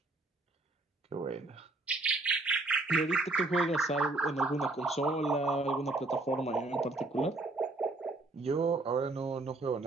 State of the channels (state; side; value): quieter; left; 3.1 dB